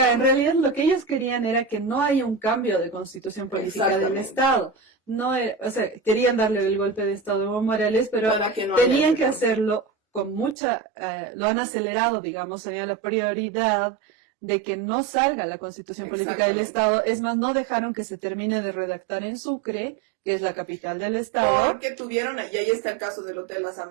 en realidad lo que ellos querían era que no haya un cambio de constitución política del Estado. No era, o sea, querían darle el golpe de Estado a Evo Morales, pero tenían que hacerlo con mucha... lo han acelerado, digamos, tenía la prioridad de que no salga la constitución política del Estado. Es más, no dejaron que se termine de redactar en Sucre, que es la capital del Estado. Porque tuvieron, y ahí está el caso del Hotel Las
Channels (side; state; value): left; drops out; at 10.6 s